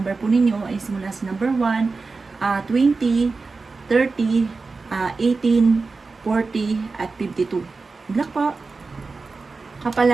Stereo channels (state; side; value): quieter; left; 4.1 dB